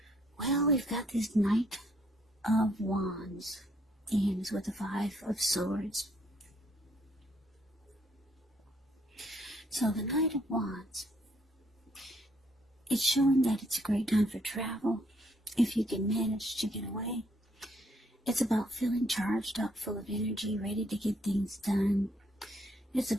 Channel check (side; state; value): both; normal; correlation 0.69